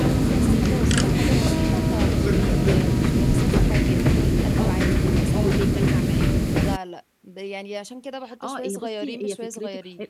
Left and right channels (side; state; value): both; identical; correlation 1.00